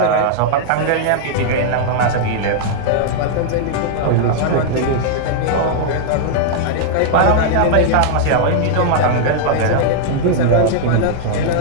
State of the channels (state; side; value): different; both; correlation -0.01